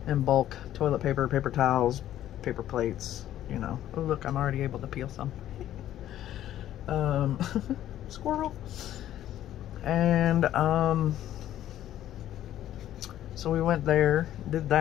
in bulk. Toilet paper, paper towels, paper plates, you know. Oh, look, I'm already able to peel some. Squirrel. And, so we went there, did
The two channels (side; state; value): right; quieter; 12.3 dB